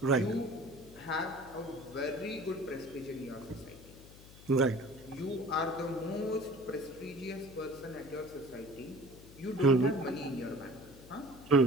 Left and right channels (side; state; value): left; noise; hum, 19 dB below the sound